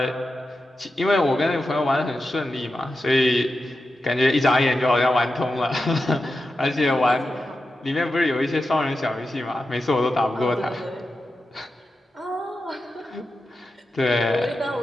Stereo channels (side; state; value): both; normal; correlation 0.90